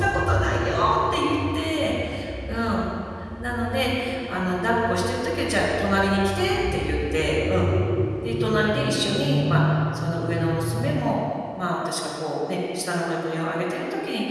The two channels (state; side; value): identical; both; correlation 1.00